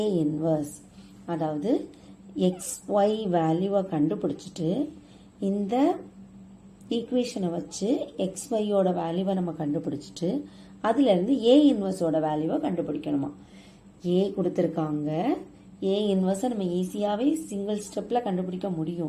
inverse. அதாவது XY வேல்யூவை கண்டுபிடிச்சிட்டு இந்த ஈக்குவேஷனை வச்சு XY ஓட வேல்யூவை நம்ம கண்டுபிடிச்சிட்டு அதிலிருந்து A இன்வர்ஸோட வேல்யூவை கண்டுபிடிக்கணுமா. A கொடுத்துருக்காங்க. A இன்வர்ஸை நம்ம ஈஸியாகவே சிங்கிள் ஸ்டெப்பில் கண்டுபிடிக்க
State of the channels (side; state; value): both; identical; correlation 1.00